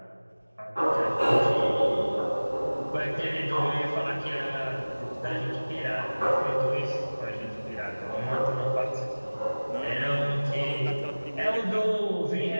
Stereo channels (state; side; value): inverted; both; correlation -1.00